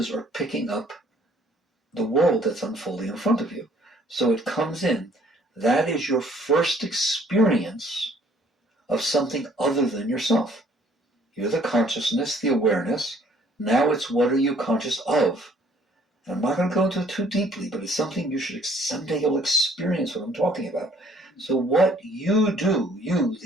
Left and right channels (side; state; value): both; normal; correlation 0.60